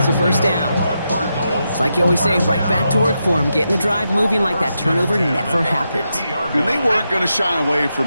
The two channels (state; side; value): inverted; both; correlation -0.85